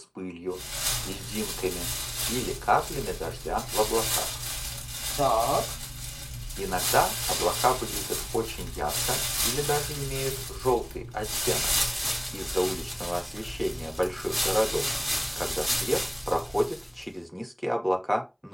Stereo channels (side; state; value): both; identical; correlation 1.00